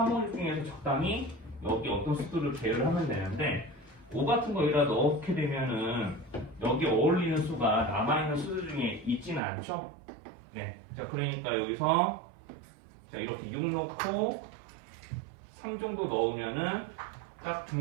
5, 6 중에서 적당히 여기 어떤 수들을 배열을 하면 되는데 5 같은 거 여기다 넣게 되면은 여기 어울리는 수가 남아있는 수들 중에 있지는 않죠? 네. 자, 그러니까 여기서 자, 이렇게 6 넣고 3 정도 넣으면은 딱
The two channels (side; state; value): left; drops out; at 9.4 s